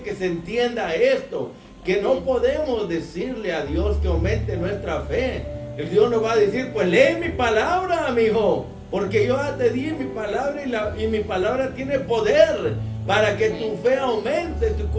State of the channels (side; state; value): both; identical; correlation 1.00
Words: se entienda esto, que no podemos decirle a Dios que aumente nuestra fe. El Dios nos va a decir: pues lee mi palabra, amigo, porque yo ya te di mi palabra y mi palabra tiene poder para que tu fe aumente, tu